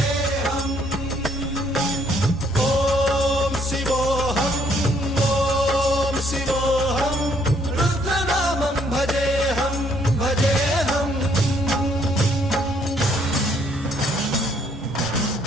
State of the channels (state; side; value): normal; both; correlation 0.67